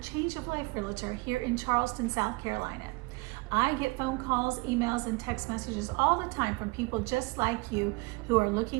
Change of Life Realtor here in Charleston, South Carolina. I get phone calls, emails, and text messages all the time from people just like you who are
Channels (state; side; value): quieter; left; 26.2 dB